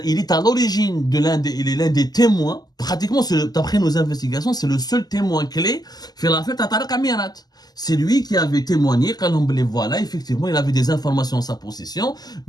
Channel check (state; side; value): late; right; 0.20 ms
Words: est à l'origine il est l'un des témoins pratiquement, d'après nos investigations, c'est le seul témoin clé fait l'affaire Tariq Amirat. C'est lui qui avait témoigné, quand on les voilà, effectivement, il avait des informations en sa possession.